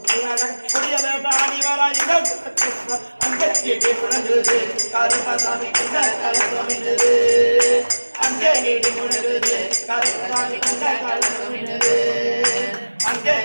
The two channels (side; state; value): both; inverted; correlation -1.00